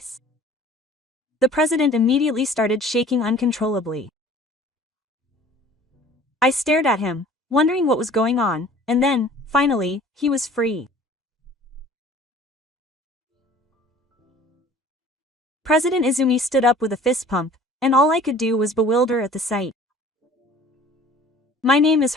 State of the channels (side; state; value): both; normal; correlation 0.49